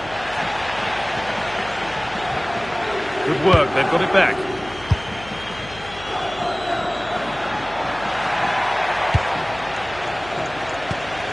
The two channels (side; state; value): left; noise; hum, 17 dB below the sound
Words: Good work, they've got it back.